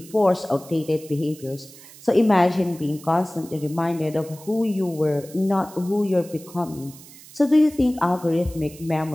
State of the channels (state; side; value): noise; right; hiss, 20 dB below the sound